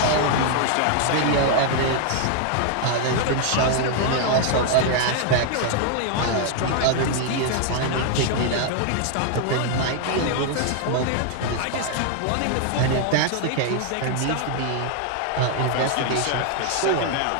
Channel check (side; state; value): both; different; correlation 0.00